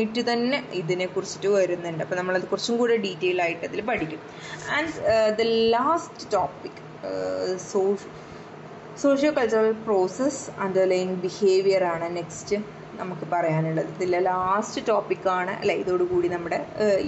തന്നെ ഇതിനെക്കുറിച്ചിട്ട് വരുന്നുണ്ട്. അപ്പോൾ നമ്മളത് കുറച്ചും കൂടെ ഡീറ്റെയിൽ ആയിട്ട് അതിൽ പഠിക്കും. And the last topic socio cultural process underline behaviour ആണ് നെക്സ്റ്റ് നമുക്ക് പറയാനുള്ളത്. ഇതിലെ ലാസ്റ്റ് ടോപ്പിക്കാണ് അല്ലേ? ഇതോടുകൂടി നമ്മുടെ ഈ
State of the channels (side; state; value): both; identical; correlation 1.00